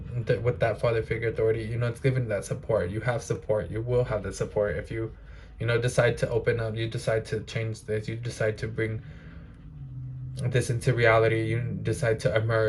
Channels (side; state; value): both; identical; correlation 1.00